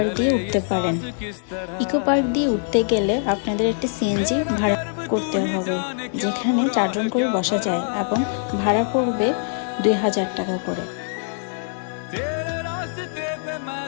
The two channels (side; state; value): right; silent; digital silence